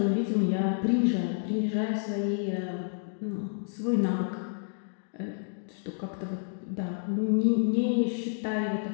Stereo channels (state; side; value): silent; right; digital silence